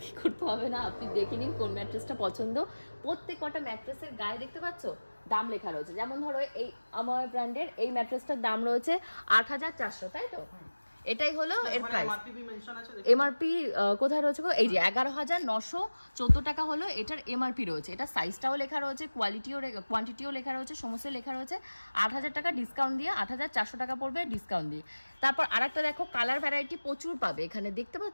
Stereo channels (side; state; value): both; inverted; correlation -1.00